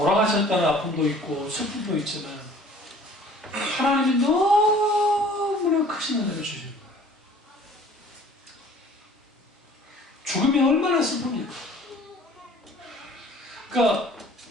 아픔도 있고 슬픔도 있지만 하나님이 너무나 크신 은혜를 주신 거예요. 죽음이 얼마나 슬픕니까? 그러니까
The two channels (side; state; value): both; normal; correlation 0.51